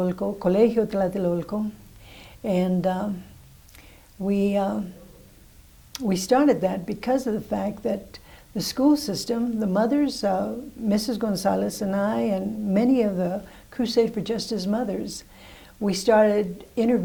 Colegio Tlatelolco, and we started that because of the fact that the school system, the mothers, Mrs. Gonzalez and I, and many of the Crusade for Justice mothers, we started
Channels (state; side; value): identical; both; correlation 1.00